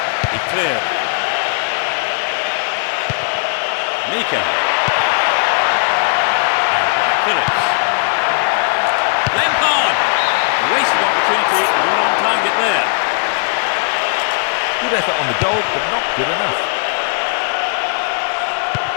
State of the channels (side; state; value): right; silent; digital silence